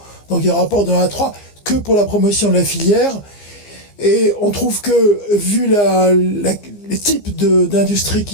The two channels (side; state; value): right; late; 15 ms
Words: Donc il y a un rapport de 1 à 3 que pour la promotion de la filière. Et on trouve que, vu les types d'industries